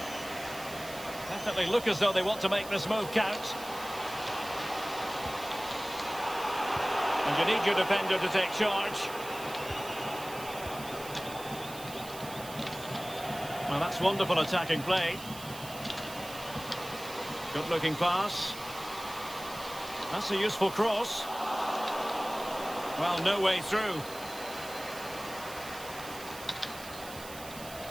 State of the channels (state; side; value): noise; right; hiss, 14 dB below the sound